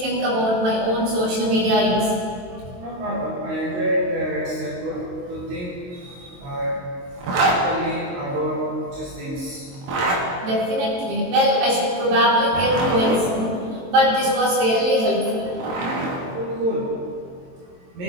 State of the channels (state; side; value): late; left; 22 ms